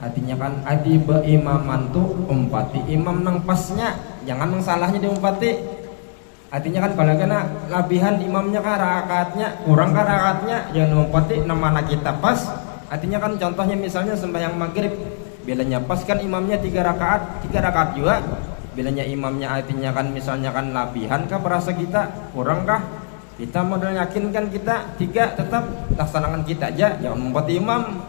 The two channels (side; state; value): right; silent; digital silence